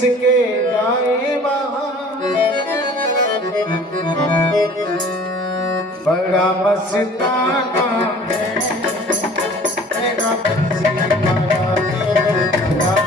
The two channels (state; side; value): normal; both; correlation 0.48